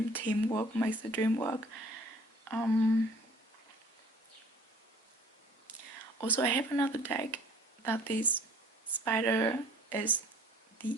makes the dream work. Also, I have another deck that this spider is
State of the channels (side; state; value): both; normal; correlation 0.52